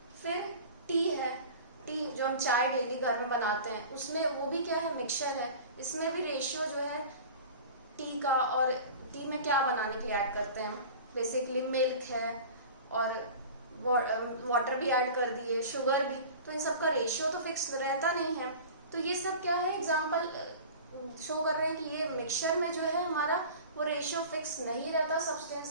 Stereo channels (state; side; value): inverted; both; correlation -0.38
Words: फिर टी है, टी जो हम चाय डेली घर में बनाते हैं उसमें वो भी क्या है, मिक्सचर है। इसमें भी रेशियो जो है टी का, और टी में क्या बनाने के लिए ऐड करते हैं, बेसिकली मिल्क है और वाटर भी ऐड कर दिए, शुगर भी, तो इन सब का रेशियो तो फिक्स रहता नहीं है। तो ये सब क्या है, एग्जाम्पल शो कर रहे हैं कि ये मिक्सचर में जो है हमारा वो रेशियो फिक्स नहीं रहता